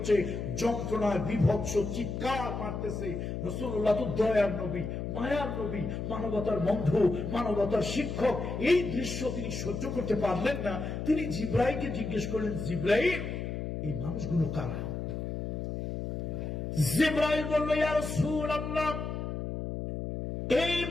যন্ত্রণায় বিভৎস চিৎকার মারতেছে। রাসূলুল্লাহ তো দয়ার নবী, মায়ার নবী, মানবতার বন্ধু, মানবতার শিক্ষক। এই দৃশ্য তিনি সহ্য করতে পারলেন না। তিনি জিবরাইলকে জিজ্ঞেস করলেন, জিবরাইল, এই মানুষগুলো কারা? জিবরাইল বলল, ইয়া রাসূলুল্লাহ, এই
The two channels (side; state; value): left; noise; hum, 4 dB below the sound